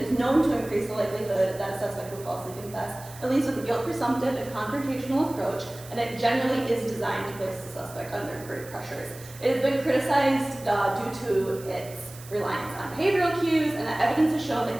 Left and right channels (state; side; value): noise; right; hiss, 18 dB below the sound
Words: known to increase the likelihood that a suspect will falsely confess. It leads with a guilt presumptive and confrontational approach, and it generally is designed to place the suspect under great pressures. It has been criticized due to its reliance on behavioral cues, and that evidence has shown